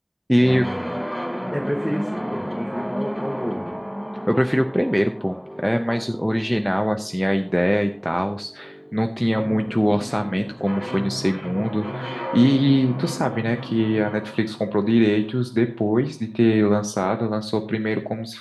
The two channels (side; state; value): both; identical; correlation 1.00